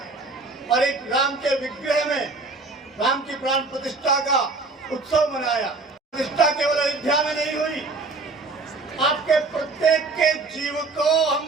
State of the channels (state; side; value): quieter; left; 3.7 dB